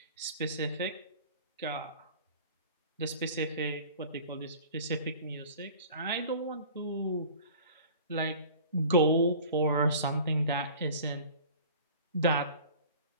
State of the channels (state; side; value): inverted; both; correlation -0.44